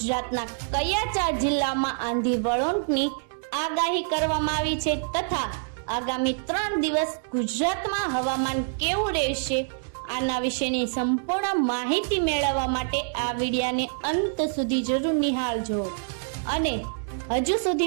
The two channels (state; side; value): silent; left; 60 dB below the other